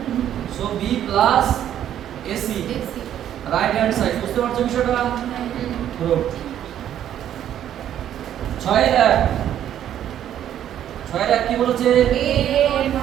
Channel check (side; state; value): left; quieter; 10.7 dB